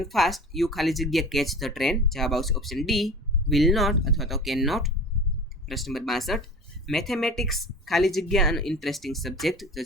fast you ખાલી જગ્યા catch the train, જવાબ આવશે ઓપ્શન ડી વિલ નોટ અથવા તો કેન નોટ. પ્રશ્ન નંબર 62 મેથેમેટિક્સ ખાલી જગ્યા અને ઇન્ટરેસ્ટિંગ સબ્જેક્ટ તો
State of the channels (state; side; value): normal; both; correlation 0.38